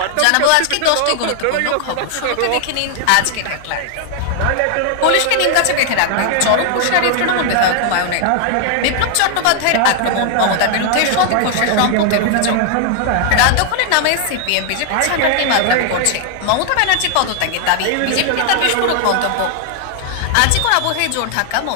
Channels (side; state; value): both; different; correlation 0.00